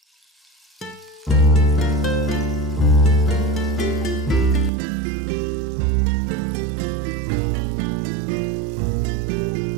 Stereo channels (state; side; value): drops out; left; at 4.7 s